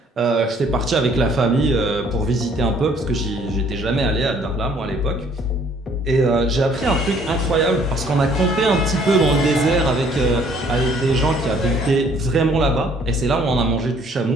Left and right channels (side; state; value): both; normal; correlation 0.60